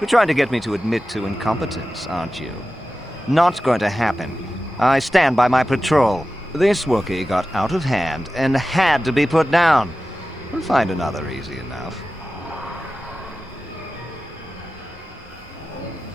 You're trying to get me to admit to incompetence, aren't you? Not going to happen. I stand by my patrol. This Wookiee got out of hand and had to be put down. We'll find another easy enough.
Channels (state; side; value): normal; both; correlation 0.94